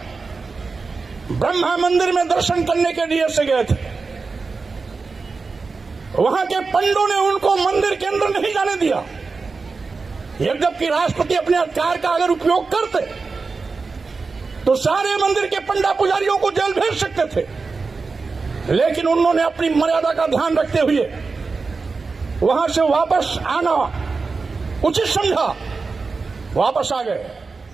ब्रह्मा मंदिर में दर्शन करने के लिए से गए थे। वहां के पंडितों ने उनको मंदिर के अंदर नहीं जाने दिया। जबकि राष्ट्रपति अपने अधिकार का अगर उपयोग करते तो सारे मंदिर के पंडा पुजारियों को जेल भेज सकते थे, लेकिन उन्होंने अपनी मर्यादा का ध्यान रखते हुए वहां से वापस आना उचित समझा, वापस आ गए।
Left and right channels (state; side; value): quieter; left; 4.3 dB